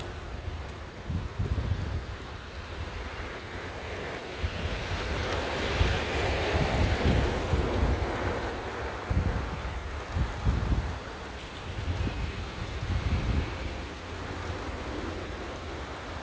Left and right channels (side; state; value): both; identical; correlation 1.00